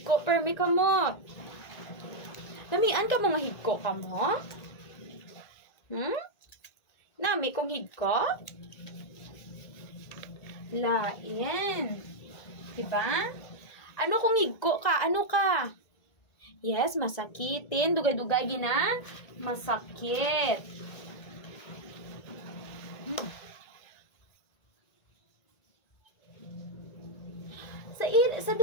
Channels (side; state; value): right; late; 1.9 ms